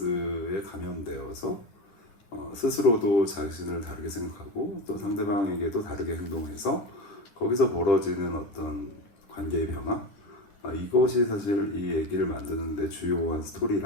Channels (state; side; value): late; right; 10 ms